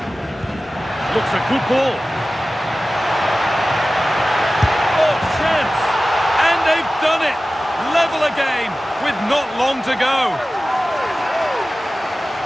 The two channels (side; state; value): both; normal; correlation 0.96